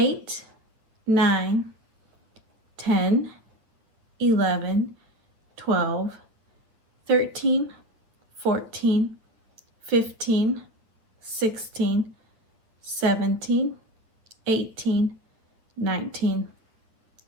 9, 10, 11, 12, 13, 14, 15, 16, 17, 18, 19,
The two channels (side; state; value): left; late; 9.0 ms